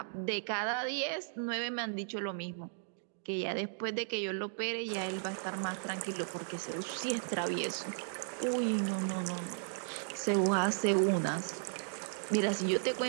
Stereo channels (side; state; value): left; silent; digital silence